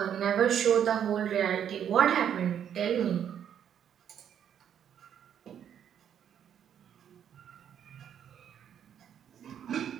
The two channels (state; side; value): quieter; left; 9.1 dB